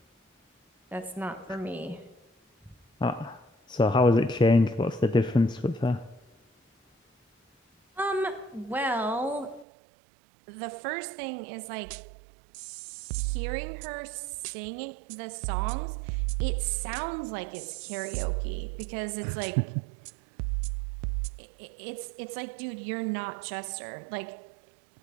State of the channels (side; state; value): left; drops out; at 9.7 s